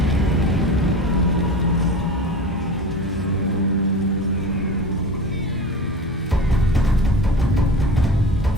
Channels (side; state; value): both; normal; correlation 0.33